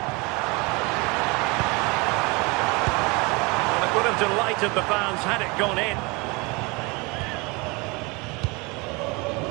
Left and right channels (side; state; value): left; quieter; 27.1 dB